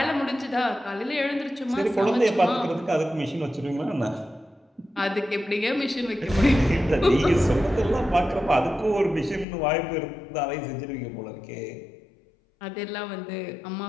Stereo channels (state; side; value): drops out; right; at 9.5 s